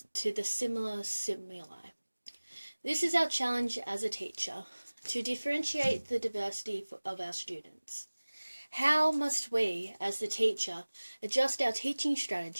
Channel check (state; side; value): inverted; both; correlation -1.00